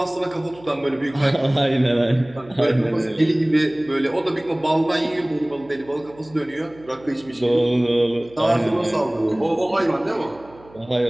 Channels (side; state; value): right; noise; hum, 24 dB below the sound